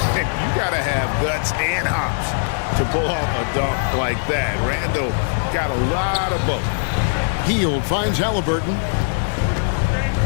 got to have guts and hops to pull off a dunk like that. Randall got a lot of both. Hield finds Halliburton.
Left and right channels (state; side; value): silent; right; digital silence